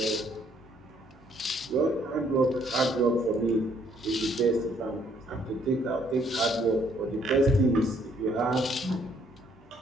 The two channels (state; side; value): normal; both; correlation 0.66